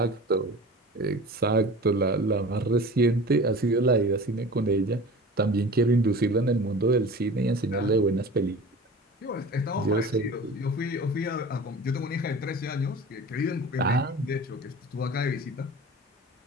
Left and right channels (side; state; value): both; normal; correlation 0.38